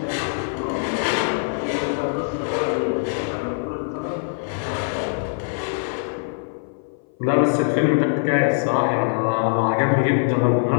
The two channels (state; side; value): silent; right; 58 dB below the other